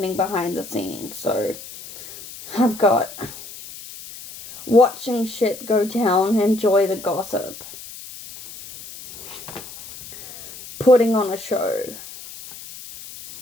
behind the scenes. So I've got watching shit go down, enjoy the gossip, putting on a show.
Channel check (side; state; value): left; noise; hiss, 15 dB below the sound